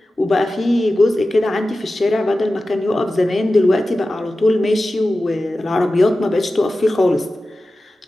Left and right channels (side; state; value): both; normal; correlation 0.94